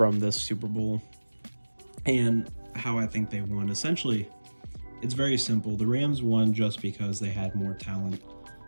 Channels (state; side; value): inverted; both; correlation -1.00